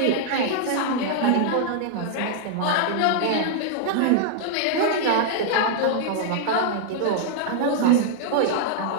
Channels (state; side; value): different; both; correlation -0.01